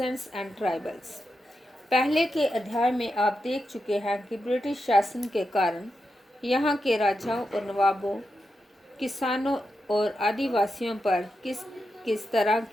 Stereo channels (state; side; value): normal; both; correlation 0.87